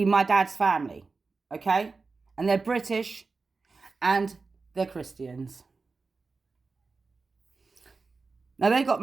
my dad's family, okay? And they're British and they're Christians. Now, they got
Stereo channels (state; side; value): quieter; left; 4.2 dB